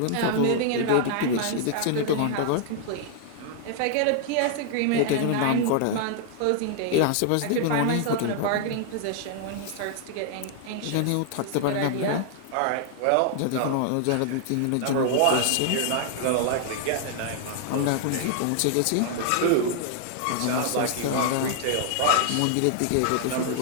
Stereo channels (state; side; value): different; both; correlation 0.00